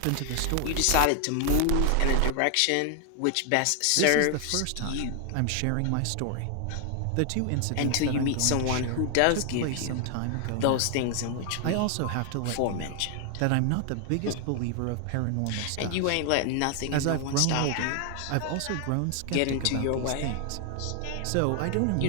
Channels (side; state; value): both; different; correlation 0.00